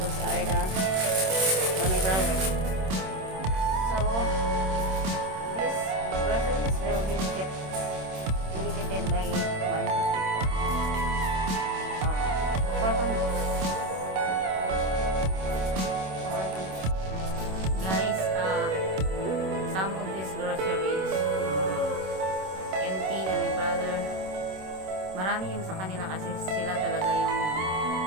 are the, for my brother. So, this groceries will be dedicated by 1, 2, 3, 4 families. 4 families. Guys, some of these groceries, NT and my brother, marami yung sa kanila kasi sila talaga yung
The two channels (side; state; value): left; late; 26 ms